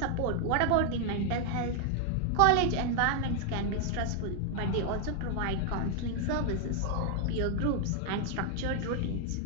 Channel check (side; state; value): both; different; correlation 0.00